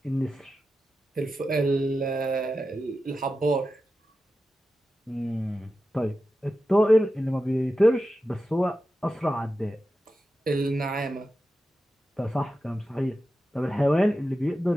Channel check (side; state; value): both; normal; correlation 0.92